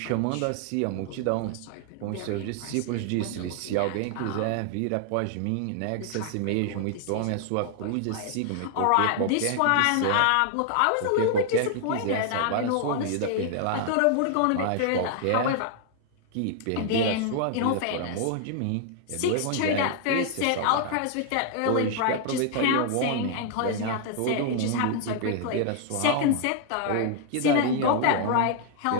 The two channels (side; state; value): both; different; correlation 0.00